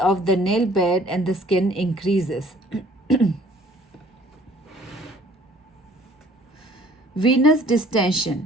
the nail bed and the skin increases. Venous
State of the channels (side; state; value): both; normal; correlation 0.56